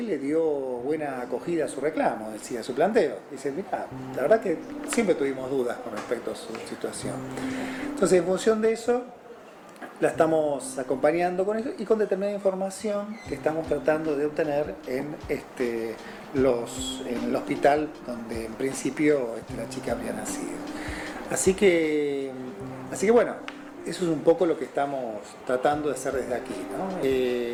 le dio buena acogida a su reclamo, decía, a su planteo. Dice, mira, la verdad que siempre tuvimos dudas con respecto a su situación. Entonces, en función de eso, la estamos acompañando con eso y con determinada información que estamos tratando de obtener en el hospital donde en principio la chica habría nacido. Así que bueno, eso es un poco lo que estamos tratando de hacer desde aquí, ¿no?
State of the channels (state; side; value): identical; both; correlation 1.00